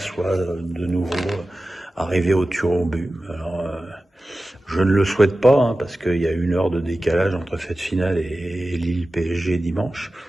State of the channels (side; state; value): both; normal; correlation 0.95